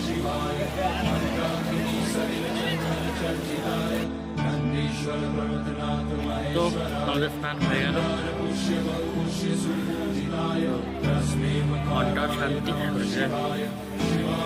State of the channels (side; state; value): both; identical; correlation 1.00